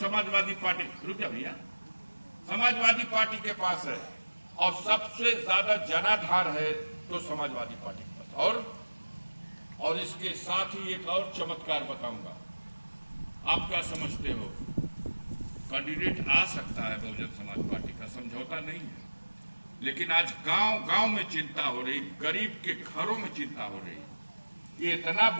पार्टी, रुक जा भैया, समाजवादी पार्टी के पास है। और सबसे ज्यादा जनाधार है तो समाजवादी पार्टी के पास। और इसके साथ ही एक और चमत्कार बताऊंगा। आप क्या समझते हो, कैंडिडेट आ सकता है बहुजन समाज पार्टी का? है, समझौता नहीं है। लेकिन आज गांव गांव में चिंता हो रही, गरीब के घरों में चिंता हो रही। ये इतना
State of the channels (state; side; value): inverted; both; correlation -1.00